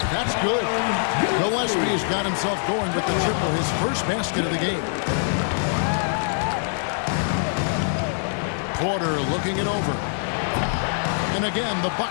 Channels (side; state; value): right; silent; digital silence